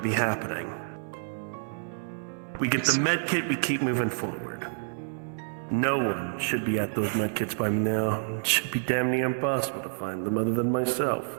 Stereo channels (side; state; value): left; silent; digital silence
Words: be happening. We get the med kit, we keep moving forward. No one should be at those med kits by now. It should be damn near impossible to find them other than myself.